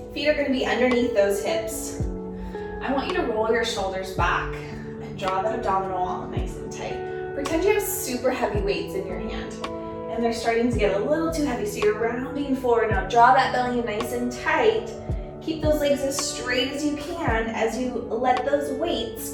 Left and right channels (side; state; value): both; identical; correlation 1.00